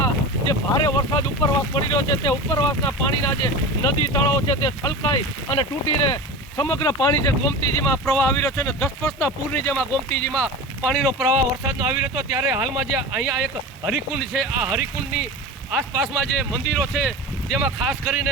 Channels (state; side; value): normal; both; correlation 0.30